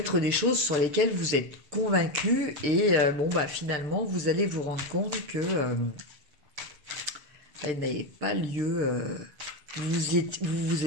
des choses sur lesquelles vous êtes convaincu et bon bah finalement vous allez vous rendre compte que elle n'avait pas lieu. Vous vous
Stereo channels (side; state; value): left; late; 7.3 ms